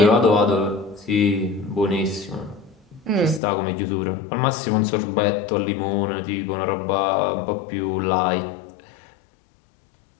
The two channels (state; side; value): drops out; right; at 3.4 s